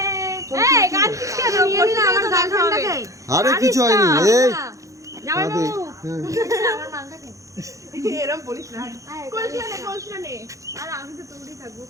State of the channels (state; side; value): late; left; 0.15 ms